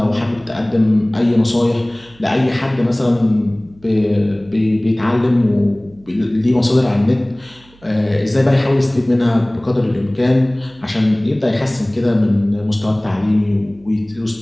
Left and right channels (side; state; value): right; noise; hum, 28 dB below the sound